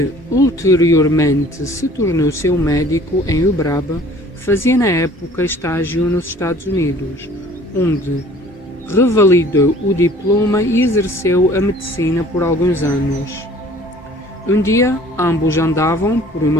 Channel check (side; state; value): both; normal; correlation 0.52